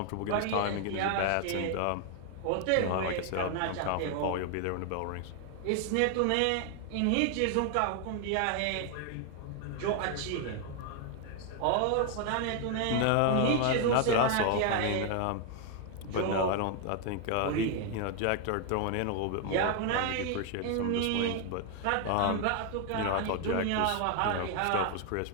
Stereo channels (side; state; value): both; different; correlation 0.00